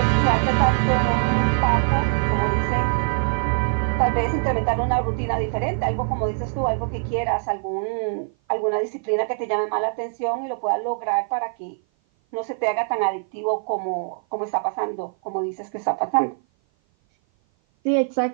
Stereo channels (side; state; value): left; silent; 56 dB below the other